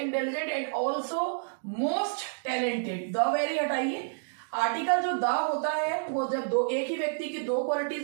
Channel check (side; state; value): left; silent; digital silence